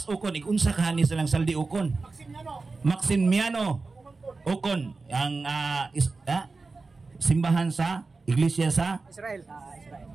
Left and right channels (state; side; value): quieter; left; 3.9 dB